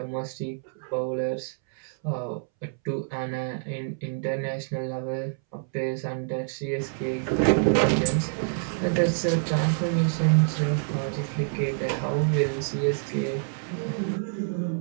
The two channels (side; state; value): left; silent; 60 dB below the other